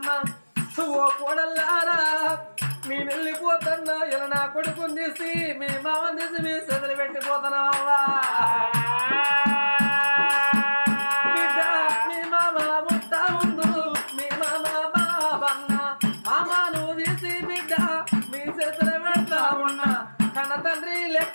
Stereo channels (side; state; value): both; inverted; correlation -1.00